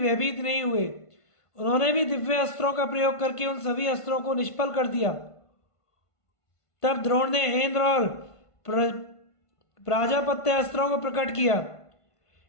नहीं हुए। उन्होंने भी दिव्य अस्त्रों का प्रयोग करके उन सभी अस्त्रों को निष्फल कर दिया। तब द्रोण ने इंद्र और प्राजापत्य अस्त्रों को प्रकट किया।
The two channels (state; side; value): late; right; 1.5 ms